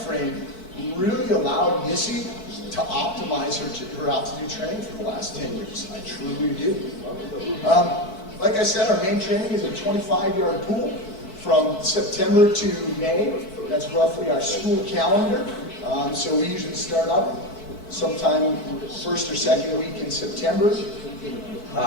frame really allowed Missy to optimize her altitude training for the last 10 years. I truly do. Like I said, our main training is a 25-yard pool from September to May. That's roughly our school calendar. So we usually start up sometime first or second week in September.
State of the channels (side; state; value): right; late; 4.6 ms